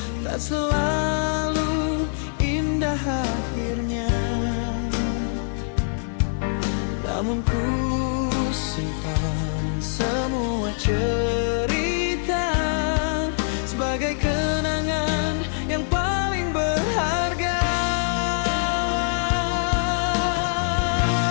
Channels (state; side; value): silent; right; 63 dB below the other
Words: tak selalu indah akhirnya. Namun ku simpan semua cerita sebagai kenangan yang paling berharga.